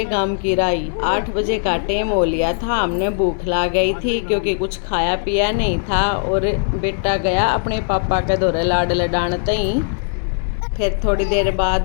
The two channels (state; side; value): silent; right; digital silence